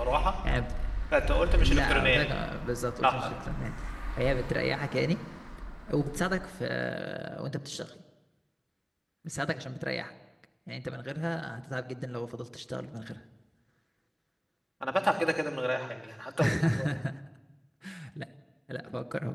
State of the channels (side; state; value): both; identical; correlation 1.00